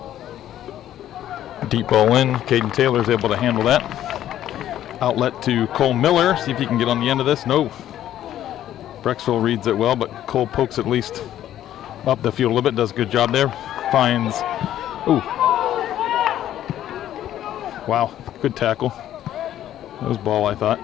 Deep ball in. Caden Taylor's able to handle that. Outlet to Cole Miller. See if he can get on the end of this. No. Brecksville reads it well, but Cole pokes at least up the field a little bit. Does a good job there. Finds. Ooh. Wow. Good tackle. That was ball, I thought.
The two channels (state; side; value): quieter; right; 12.0 dB